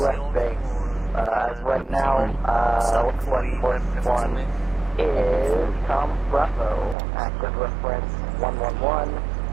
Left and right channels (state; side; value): drops out; left; at 7.0 s